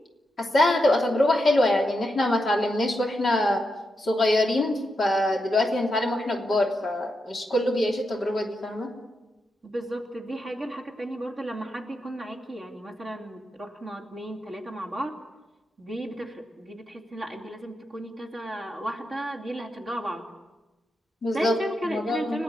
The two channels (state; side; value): normal; both; correlation 0.85